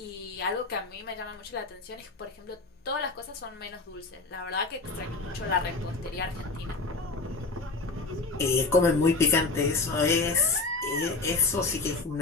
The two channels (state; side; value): quieter; right; 3.6 dB